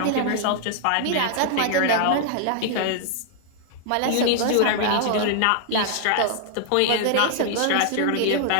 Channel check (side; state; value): both; different; correlation 0.00